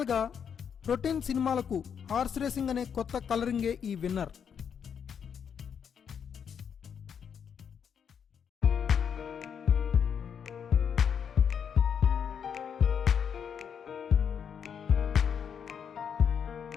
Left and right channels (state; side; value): quieter; right; 7.5 dB